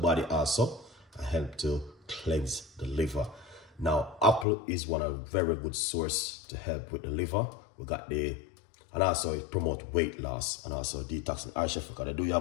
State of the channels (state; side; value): drops out; right; at 4.5 s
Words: also and help to cleanse the liver. Now, apple is one of very good source to help with the liver. We got the, and also it promote weight loss and also detoxing. All right, Chef Ricardo, do you